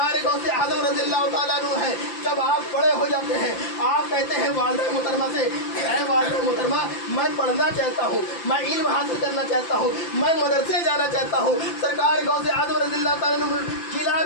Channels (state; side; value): late; right; 5.9 ms